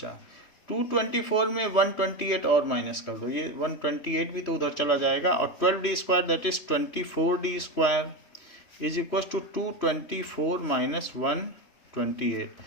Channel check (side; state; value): right; late; 3.0 ms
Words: 224 में 128 और माइनस कर दो, ये 128 भी तो उधर चला जाएगा, और 12d square that is 24d square is equal to 224 minus 128।